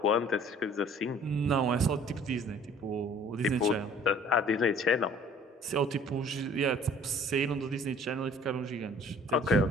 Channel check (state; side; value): normal; both; correlation 0.53